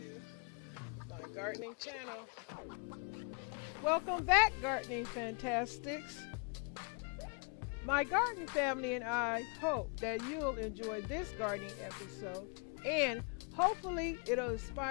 my gardening channel. Welcome back, gardening fantastics. My garden family and I hope that you'll enjoy this gardening episode, and hopefully it'll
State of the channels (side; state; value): right; quieter; 37.2 dB